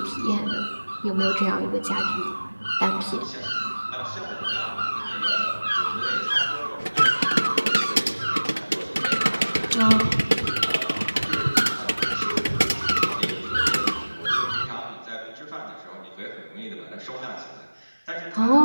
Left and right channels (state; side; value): inverted; both; correlation -1.00